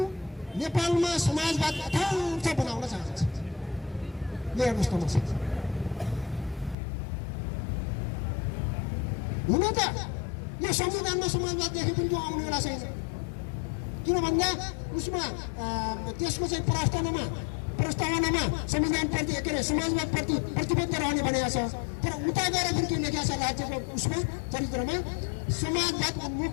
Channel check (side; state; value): right; drops out; at 6.8 s